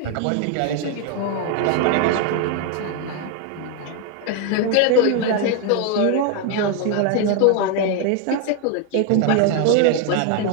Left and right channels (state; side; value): different; both; correlation 0.01